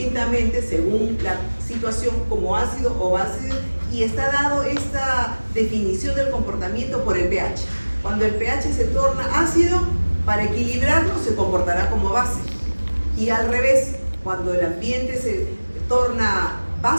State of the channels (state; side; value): inverted; both; correlation -1.00